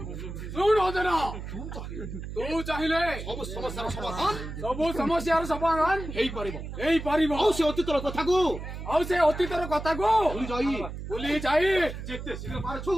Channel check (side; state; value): right; noise; hum, 8 dB below the sound